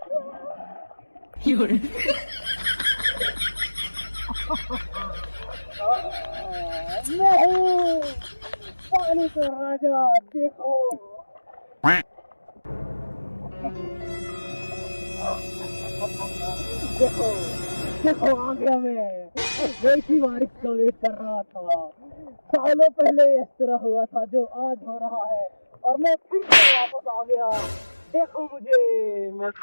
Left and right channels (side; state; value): both; inverted; correlation -1.00